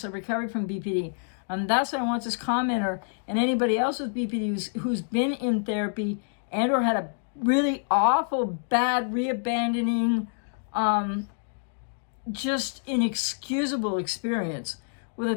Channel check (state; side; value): silent; right; digital silence